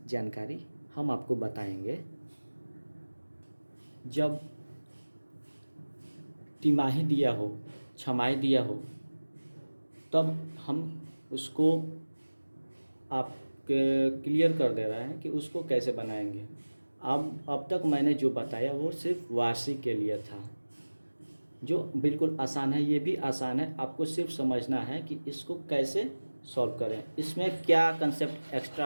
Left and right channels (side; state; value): both; inverted; correlation -1.00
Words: जानकारी हम आपको बताएंगे। जब तिमाही दिया हो छमाही दिया हो तब हम उसको आप क्लियर कर दे रहे हैं कि उसको कैसे बनाएंगे। अब तक मैंने जो बताया वो सिर्फ वार्षिक के लिए था, जो बिल्कुल आसान है। ये भी आसान है, आपको सिर्फ समझना है कि इसको कैसे सॉल्व करें, इसमें क्या कंसेप्ट